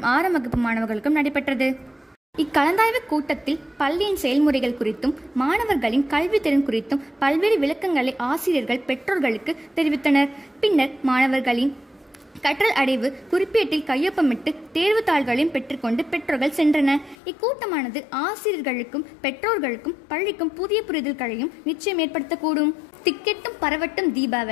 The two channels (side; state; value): right; drops out; at 17.2 s